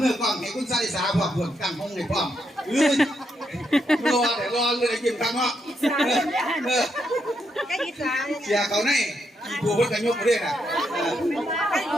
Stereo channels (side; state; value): both; normal; correlation 0.80